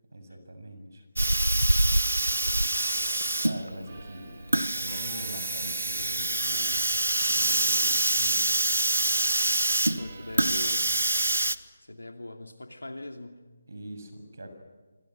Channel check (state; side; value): inverted; both; correlation -0.77